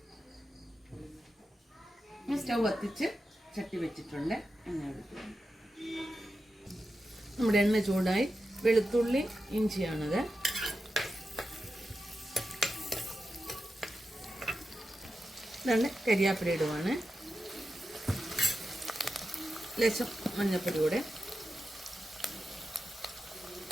സ്റ്റൗ കത്തിച്ച് ചട്ടി വെച്ചിട്ടുണ്ട്. നമ്മുടെ എണ്ണ ചൂടായി. വെളുത്തുള്ളി ഇഞ്ചിയാണത്. ഇതാണ് കരിയാപ്പില ഇടുവാണ്. ലേശം മഞ്ഞപ്പൊടി കൂടെ.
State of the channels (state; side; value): normal; both; correlation 0.90